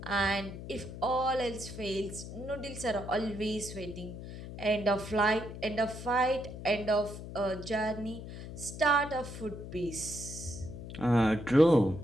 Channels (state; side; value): noise; left; hum, 10 dB below the sound